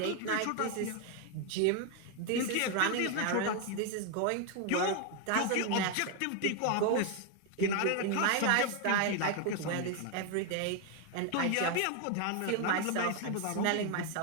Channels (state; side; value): different; both; correlation 0.01